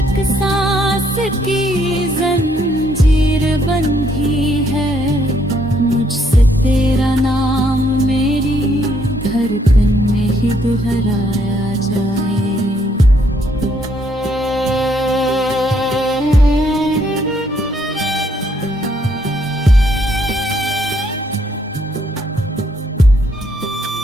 सांस की जंजीर बंधी है, मुझसे तेरा नाम मेरी धड़कन में ही दोहराया जाए।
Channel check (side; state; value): both; normal; correlation 0.71